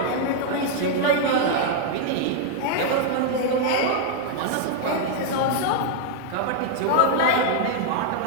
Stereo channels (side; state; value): both; different; correlation 0.00